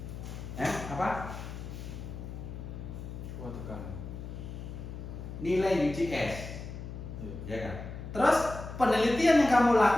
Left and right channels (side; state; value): left; noise; hum, 9 dB below the sound